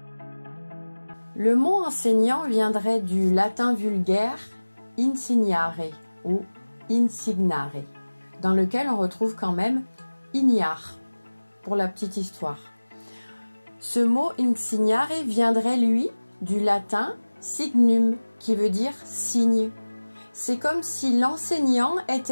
Le mot enseignant viendrait du latin vulgaire insignare ou insignare, dans lequel on retrouve quand même ignare, pour la petite histoire. Ce mot insignare viendrait, lui, du latin signum, qui veut dire signe. C'est comme si l'enseignant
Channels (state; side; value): inverted; both; correlation -1.00